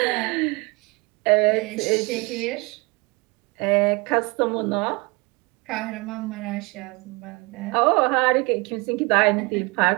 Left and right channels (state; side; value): quieter; left; 26.8 dB